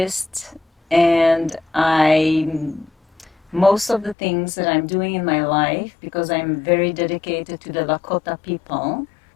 and most of the things that I'm doing in my life, because I'm very dedicated to the Lakota people,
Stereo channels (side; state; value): right; drops out; at 4.2 s